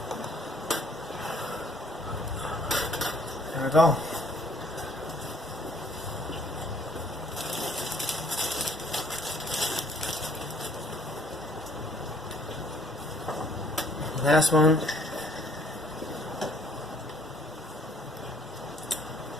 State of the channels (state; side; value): normal; both; correlation 0.61